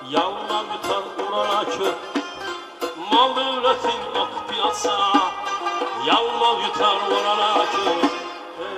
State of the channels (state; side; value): identical; both; correlation 1.00